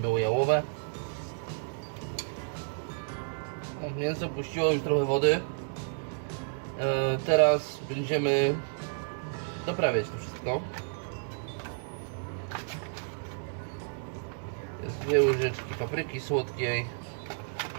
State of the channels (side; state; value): left; silent; digital silence